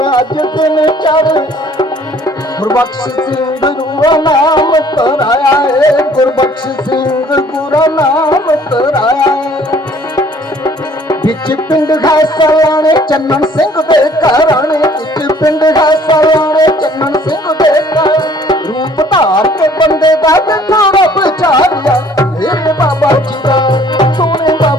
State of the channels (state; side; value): normal; both; correlation 0.56